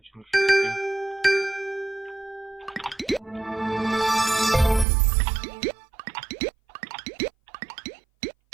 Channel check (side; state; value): left; drops out; at 4.9 s